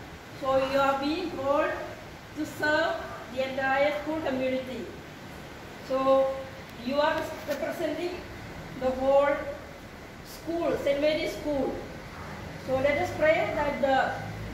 So you are being called to serve the entire school community. So you are representing the whole school, St. Mary's School. So let us pray that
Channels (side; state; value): both; identical; correlation 1.00